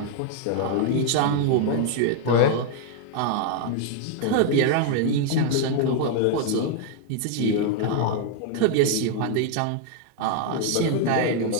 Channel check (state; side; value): different; both; correlation 0.00